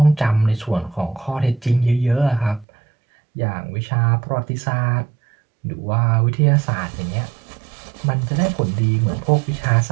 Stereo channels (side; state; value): left; drops out; at 2.7 s